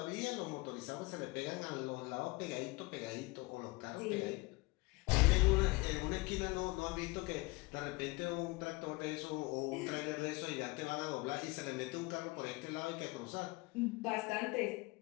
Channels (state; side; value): quieter; right; 23.5 dB